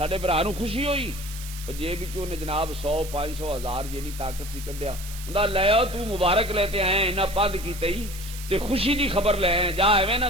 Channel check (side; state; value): right; noise; hiss, 13 dB below the sound